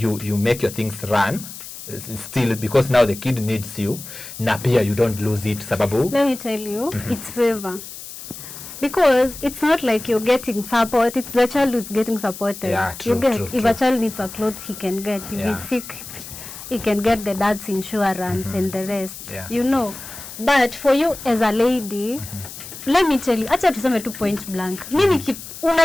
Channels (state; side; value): noise; left; hiss, 13 dB below the sound